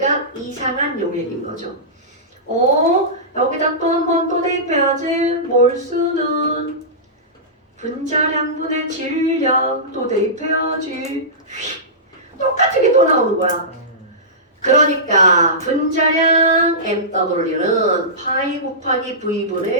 이상한 용액인 거죠. 여기다 또 한 번 또 대입해야지. 몰수는 분자량분의 질량 또 대입해야지. 똑같은 게 또 나오는 거야. 그러니까 분자량 MW는 파이 곱하기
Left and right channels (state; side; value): normal; both; correlation -0.18